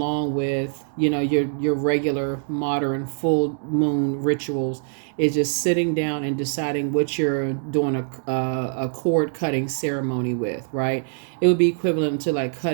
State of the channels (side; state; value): left; silent; digital silence